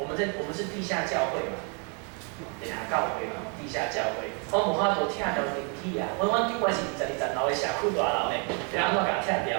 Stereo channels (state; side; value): quieter; left; 37.5 dB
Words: 们是地下教会嘛。地下教会嘛，地下教会，阮无法度拆掉电梯啊！阮顶悬是22楼的社区大楼的，要安怎甲拆掉？